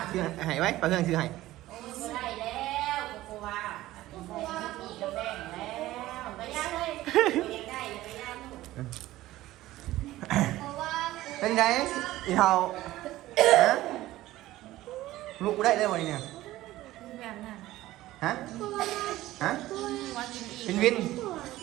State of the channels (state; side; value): quieter; left; 16.1 dB